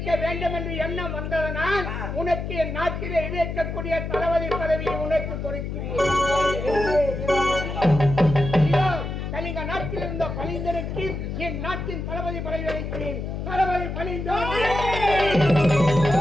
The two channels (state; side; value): noise; left; hum, 5 dB below the sound